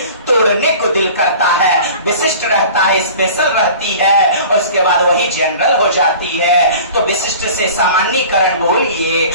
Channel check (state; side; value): inverted; both; correlation -0.42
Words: तोड़ने को दिल करता है। विशिष्ट रहता है, स्पेशल रहती है, और उसके बाद वही जनरल हो जाती है। तो विशिष्ट से सामान्यकरण बोलिए,